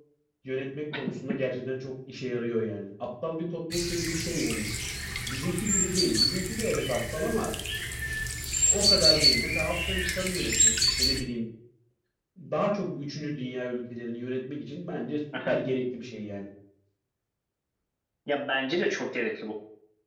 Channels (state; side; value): identical; both; correlation 1.00